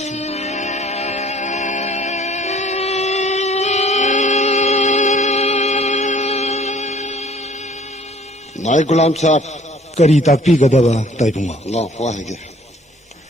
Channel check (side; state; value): both; normal; correlation 0.55